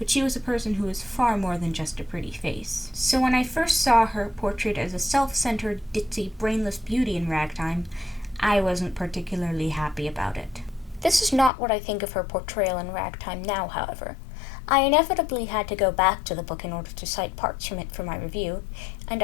she was a person who was far more than just a pretty face. So when I first saw her portrayed as a self-centered, ditzy, brainless beauty in Ragtime, I wasn't particularly happy about it. This is not what I think of her portrayal in Ragtime now, however. I inevitably had to go back to the book in order to cite parts from it for my review, and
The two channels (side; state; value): right; drops out; at 11.5 s